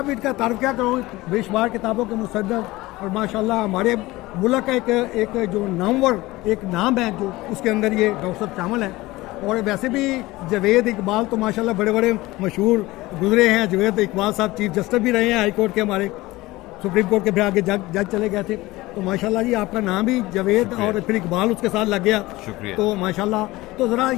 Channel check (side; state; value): right; quieter; 19.4 dB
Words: इनका तारीफ़ क्या करूँ, बेशुमार किताबों के मुसद्दक़ और माशाल्लाह हमारे मुल्क का एक जो नामवर एक नाम है जो उसके अंदर ये डॉक्टर साहब शामिल हैं। और वैसे भी जावेद इकबाल तो माशाल्लाह बड़े बड़े मशहूर गुजरे हैं। जावेद इकबाल साहब चीफ जस्टिस भी रहे हैं हाई कोर्ट के, हमारे सुप्रीम कोर्ट के फिर आगे जज चले गए थे। तो माशाल्लाह जी आपका नाम भी जावेद और फिर इकबाल उसके साथ लग गया, शुक्रिया। तो माशाल्लाह, तो ज़रा